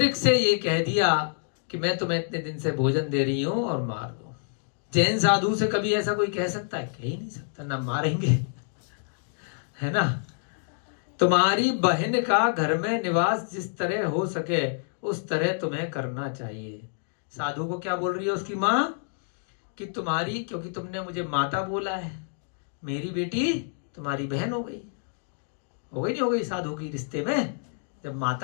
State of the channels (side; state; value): right; silent; digital silence